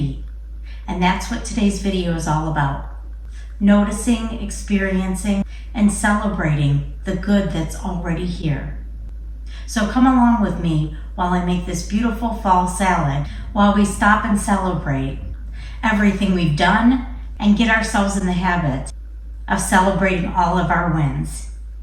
And that's what today's video is all about. Noticing, experiencing, and celebrating the good that's already here. So come along with me while I make this beautiful fall salad, while we stop and celebrate everything we've done and get ourselves in the habit of celebrating all of our wins,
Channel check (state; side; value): identical; both; correlation 1.00